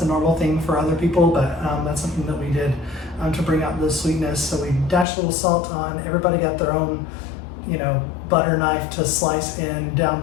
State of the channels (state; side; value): drops out; right; at 5.1 s